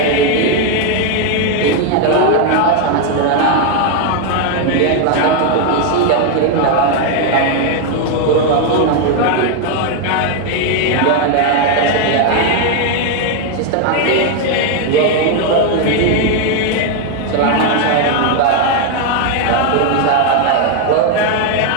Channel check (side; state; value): both; different; correlation 0.01